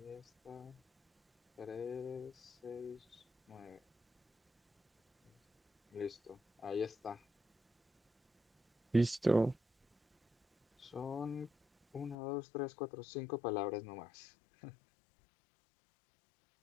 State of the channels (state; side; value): drops out; right; at 12.2 s